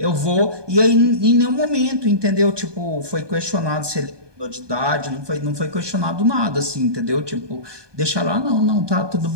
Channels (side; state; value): left; late; 1.2 ms